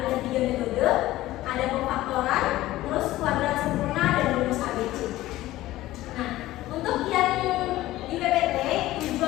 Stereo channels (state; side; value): quieter; right; 16.1 dB